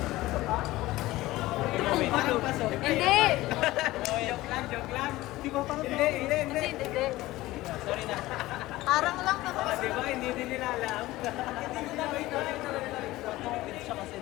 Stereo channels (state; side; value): quieter; right; 17.7 dB